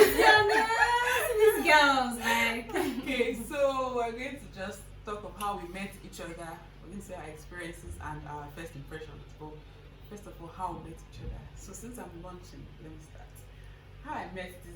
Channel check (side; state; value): both; identical; correlation 1.00